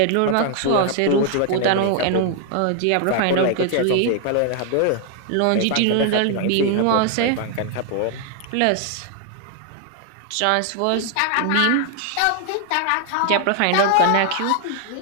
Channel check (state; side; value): different; both; correlation 0.00